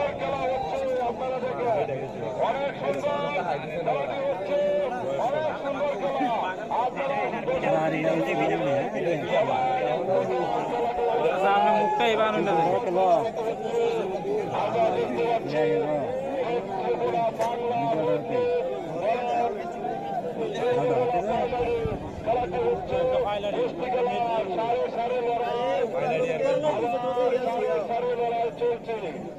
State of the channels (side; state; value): left; noise; rumble, 26 dB below the sound